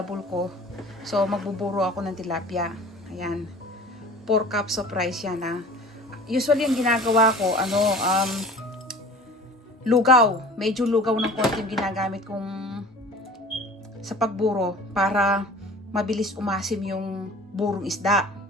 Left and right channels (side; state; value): both; normal; correlation 0.42